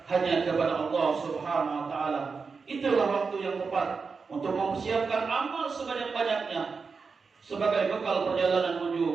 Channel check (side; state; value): left; quieter; 5.0 dB